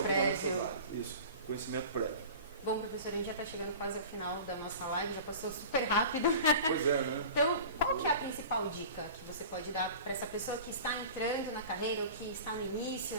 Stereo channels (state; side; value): inverted; both; correlation -0.38